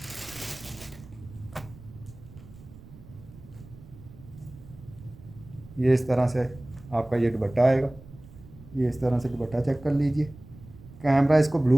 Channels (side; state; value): right; noise; rumble, 19 dB below the sound